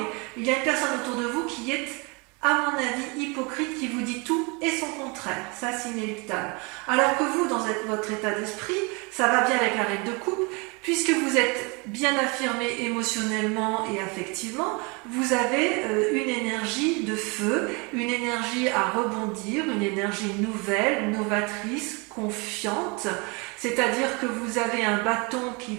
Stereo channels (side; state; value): left; quieter; 29.8 dB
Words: il y a une personne autour de vous qui est, à mon avis, hypocrite, qui vous dit tout et son contraire. Ça, c'est inéluctable. Alors que vous, dans votre état d'esprit, ça va bien avec la reine de coupe, puisque vous êtes bien affirmé émotionnellement et affectivement, vous avez une énergie de feu, une énergie à rebondir, une énergie nouvelle, novatrice, confiante, c'est-à-dire que vous avez un bâton qui